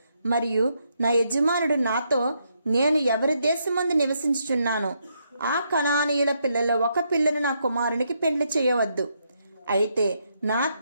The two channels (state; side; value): inverted; both; correlation -0.78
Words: మరియు నా యజమానుడు నాతో, నేను ఎవరి దేశమందు నివసించుచున్నానో ఆ కనానీయుల పిల్లలో ఒక పిల్లను నా కుమారునికి పెళ్లి చేయవద్దు. అయితే నా